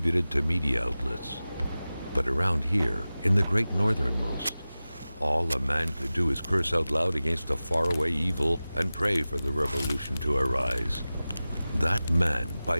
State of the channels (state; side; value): inverted; both; correlation -0.96